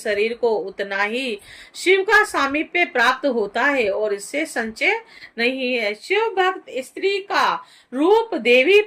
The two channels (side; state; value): both; identical; correlation 1.00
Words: को उतना ही शिव का सामीप्य प्राप्त होता है और इससे संचय नहीं है। शिव भक्त स्त्री का रूप देवी